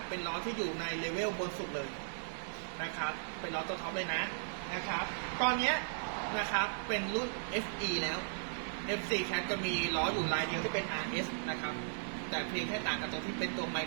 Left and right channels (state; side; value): silent; left; digital silence